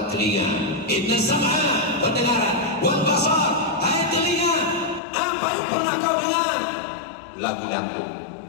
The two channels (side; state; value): right; drops out; at 5.0 s